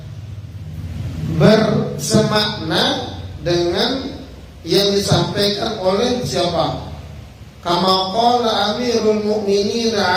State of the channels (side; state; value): both; identical; correlation 1.00